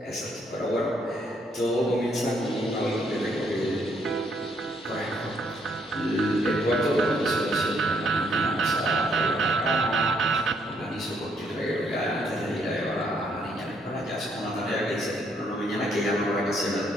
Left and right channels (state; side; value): normal; both; correlation 0.70